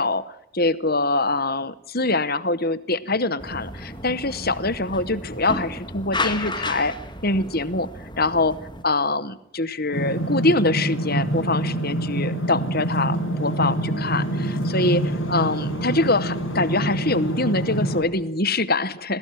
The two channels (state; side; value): normal; both; correlation 0.06